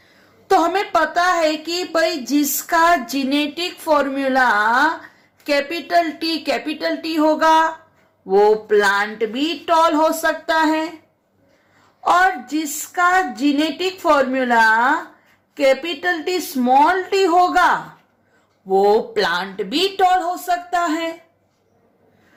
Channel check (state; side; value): identical; both; correlation 1.00